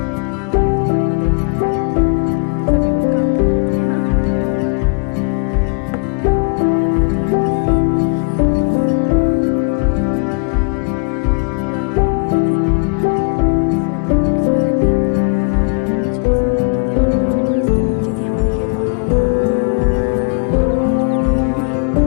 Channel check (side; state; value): right; quieter; 36.1 dB